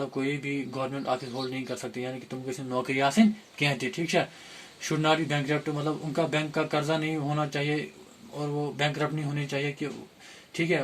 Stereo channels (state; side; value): identical; both; correlation 1.00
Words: कोई भी गवर्नमेंट ऑफिस होल्ड नहीं कर सकते, यानी कि तुम किसी नौकरी हासिल कहते, ठीक है। शुड नॉट बी बैंकरप्ट, मतलब उनका बैंक का कर्जा नहीं होना चाहिए और वो बैंकरप्ट नहीं होने चाहिए कि, ठीक है,